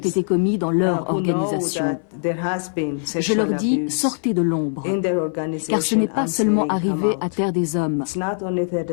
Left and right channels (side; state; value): right; silent; 58 dB below the other